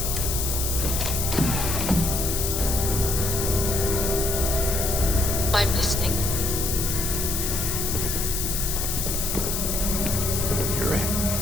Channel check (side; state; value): left; noise; hiss, 1 dB below the sound